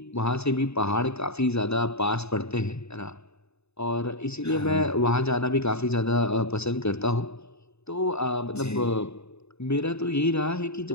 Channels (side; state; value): right; late; 0.80 ms